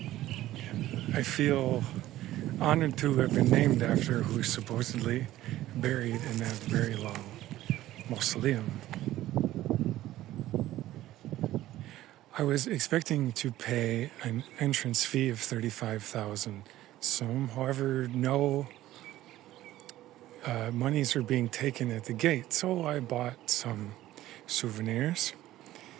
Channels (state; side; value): quieter; left; 14.8 dB